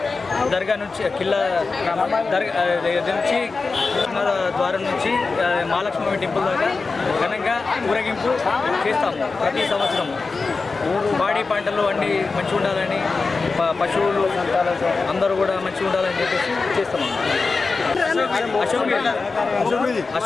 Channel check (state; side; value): quieter; right; 4.2 dB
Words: దర్గా నుంచి ద్వారం నుంచి మహాలక్ష్మి టెంపుల్ దాకా ఘనంగా ఊరేగింపు చేస్తాము ప్రతి సంవత్సరం. పాడి పంటలు అన్నీ మంచిగా ఉండాలని, పశువులు అందరూ కూడా మంచిగా ఉండాలని చెప్పేసి చేస్తాము.